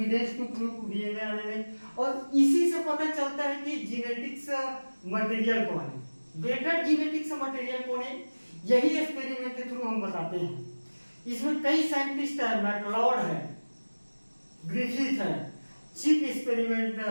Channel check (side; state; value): both; inverted; correlation -1.00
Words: to prove DNA RNA. और इसी से पता चलता है कि जेनेटिक्स मटेरियल कौन है, बेटर जेनेटिक्स मटेरियल कौन है, यही एक्सपेरिमेंट के थ्रू हम बताते हैं। इसमें कई साइंटिस्ट है, मैकलॉड है, ग्रिफिथ है, चिप एक्सपेरिमेंट